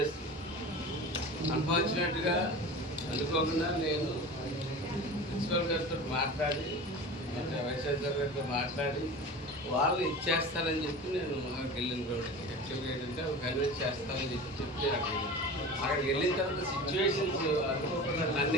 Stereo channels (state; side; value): normal; both; correlation 0.34